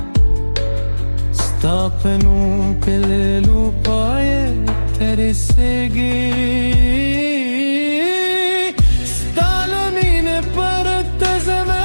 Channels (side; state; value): both; inverted; correlation -1.00